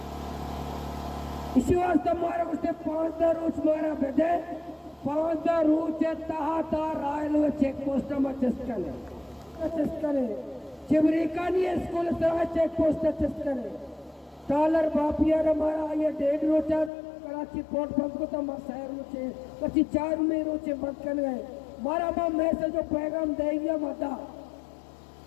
इसी वास्ते हमारा कुछ 5 रोज मारा बेटे 5 रोज तहा रायलो चेक पोस्ट में चस्कले चिवरेकानी स्कूल तरह चेक पोस्ट चस्कले डॉलर बापिया हमारा ये 1.5 रोचा कराची पोर्ट बंद को तो शहर रोचे पची 4 में रोचे बंद कर गए मारा बा मैसेज जो पैगाम देंगे मता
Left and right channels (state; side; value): drops out; right; at 16.9 s